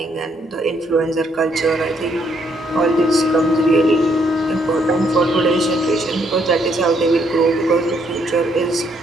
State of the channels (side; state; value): both; normal; correlation 0.71